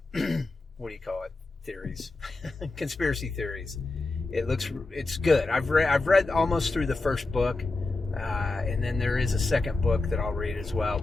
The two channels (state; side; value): quieter; right; 3.3 dB